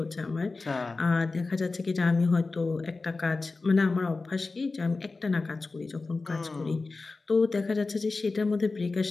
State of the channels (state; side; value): quieter; right; 3.7 dB